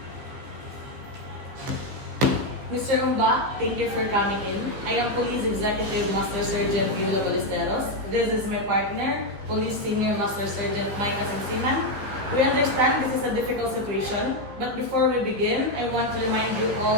Mr. Umba, thank you for coming in. I am Police Executive Master Sergeant Viola Ballesteros. This is my partner, Police Senior Master Sergeant Micah Sensinan. We understand this is a difficult situation, but before we begin, I want to remind you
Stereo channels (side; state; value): left; late; 15 ms